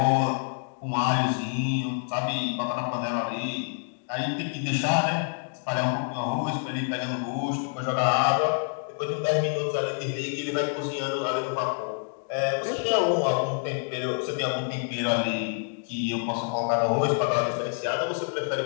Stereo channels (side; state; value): right; silent; 58 dB below the other